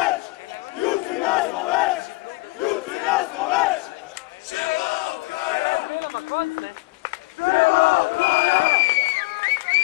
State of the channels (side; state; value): right; quieter; 23.7 dB